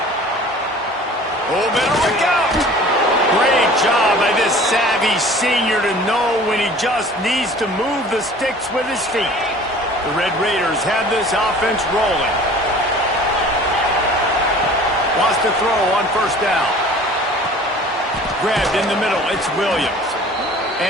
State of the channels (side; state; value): both; normal; correlation 0.46